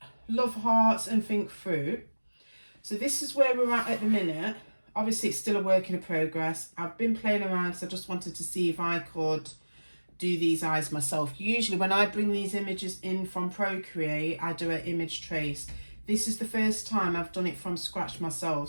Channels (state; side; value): inverted; both; correlation -1.00